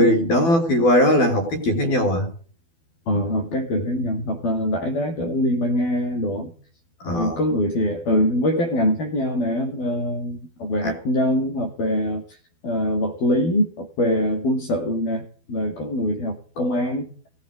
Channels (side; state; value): right; late; 12 ms